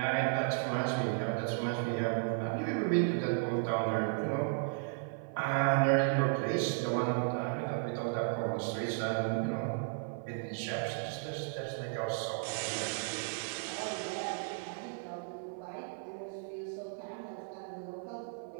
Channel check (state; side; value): silent; left; 55 dB below the other